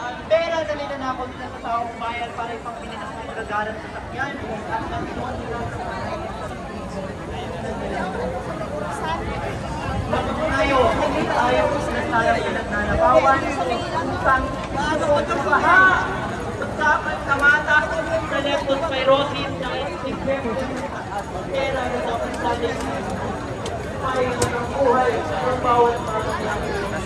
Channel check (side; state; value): both; identical; correlation 1.00